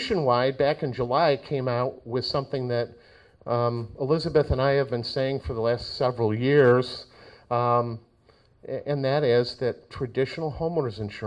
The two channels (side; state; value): both; identical; correlation 1.00